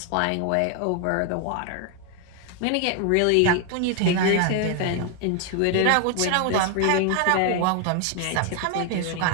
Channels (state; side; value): different; both; correlation 0.00